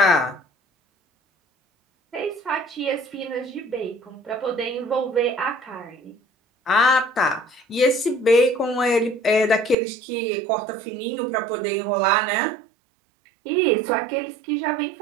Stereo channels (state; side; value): drops out; left; at 9.8 s